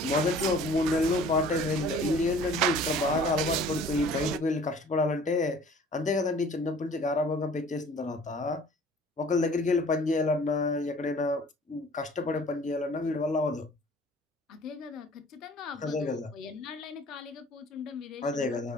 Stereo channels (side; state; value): both; normal; correlation 0.50